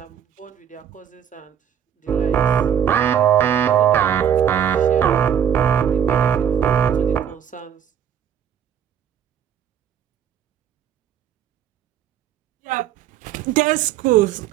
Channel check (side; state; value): left; quieter; 9.1 dB